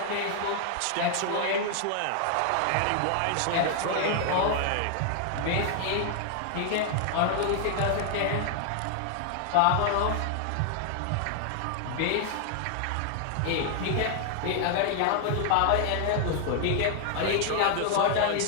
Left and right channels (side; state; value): both; different; correlation 0.00